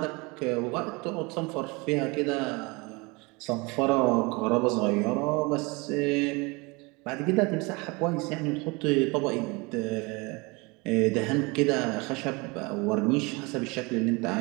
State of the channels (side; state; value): left; quieter; 26.9 dB